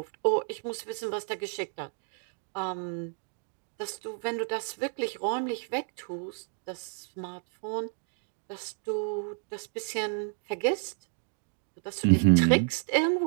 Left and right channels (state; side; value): silent; left; 57 dB below the other